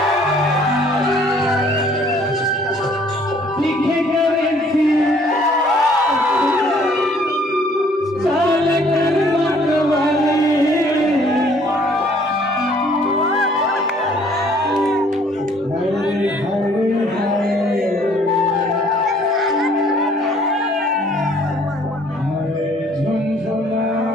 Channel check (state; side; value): normal; both; correlation 0.59